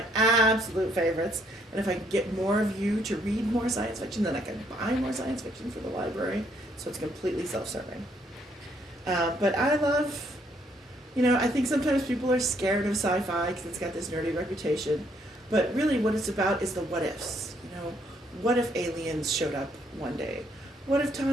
absolute favorites. And if I can get more of you to read more science fiction, then I can buy more science fiction for the library, so it's completely self-serving. But I love, I think sometimes people are scared of sci-fi because it's got this nerdy reputation. But really, what it's about is the what ifs. What if aliens showed up one day? What if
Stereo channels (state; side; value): normal; both; correlation 0.69